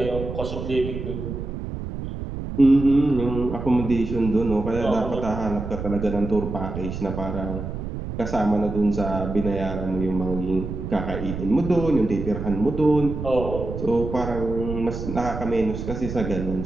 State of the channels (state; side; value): noise; right; rumble, 6 dB below the sound